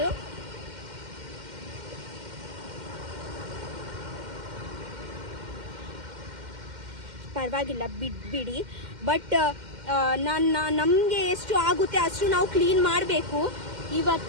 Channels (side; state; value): left; late; 2.1 ms